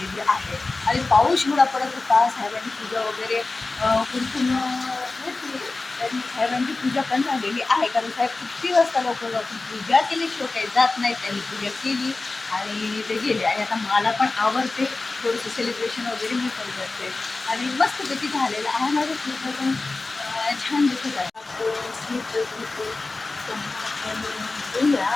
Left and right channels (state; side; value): quieter; right; 3.5 dB